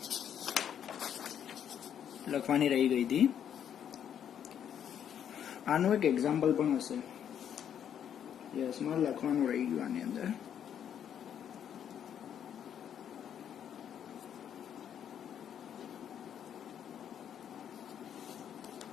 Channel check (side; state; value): right; quieter; 9.1 dB